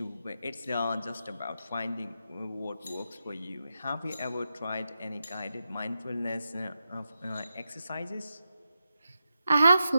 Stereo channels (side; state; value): both; inverted; correlation -0.88